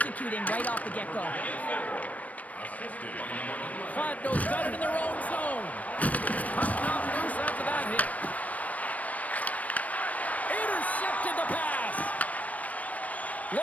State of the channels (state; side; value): late; right; 0.070 ms